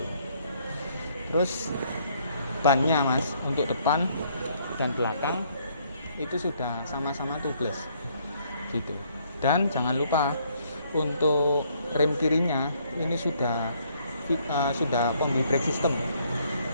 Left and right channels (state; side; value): inverted; both; correlation -0.67